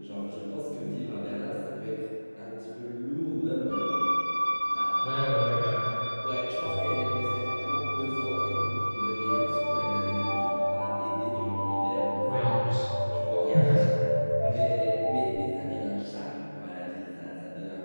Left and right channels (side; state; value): both; inverted; correlation -1.00